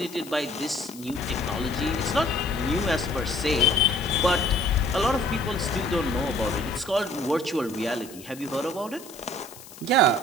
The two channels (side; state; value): left; noise; hiss, 18 dB below the sound